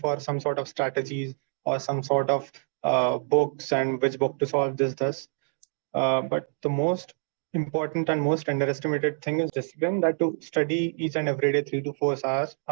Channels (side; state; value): left; silent; digital silence